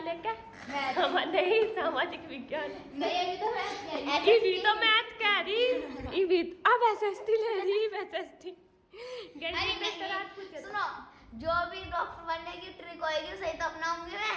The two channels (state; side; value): identical; both; correlation 1.00